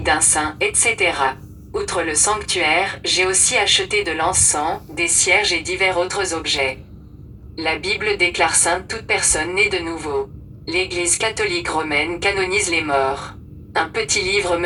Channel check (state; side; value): identical; both; correlation 1.00